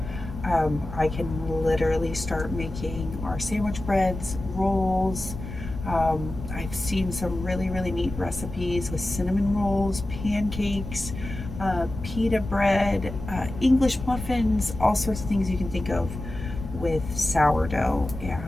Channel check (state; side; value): noise; left; rumble, 9 dB below the sound